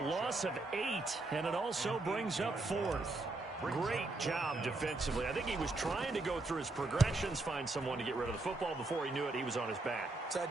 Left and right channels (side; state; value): left; quieter; 3.1 dB